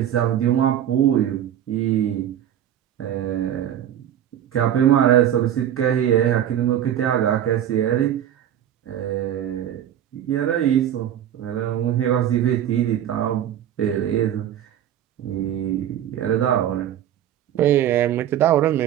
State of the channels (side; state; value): left; quieter; 10.8 dB